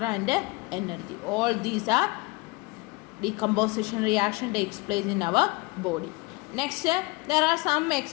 and energy. All these are decomposition reaction takes place in our body. Next, there are some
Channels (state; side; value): quieter; right; 24.1 dB